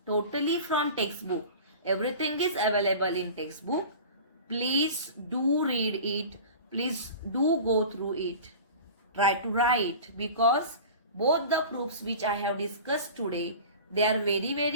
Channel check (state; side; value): inverted; both; correlation -0.37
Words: totally from textbook, everything is available in textbook. Please do read it. Please do go through it. Try to write, because both the proofs which I have discussed today, they are very,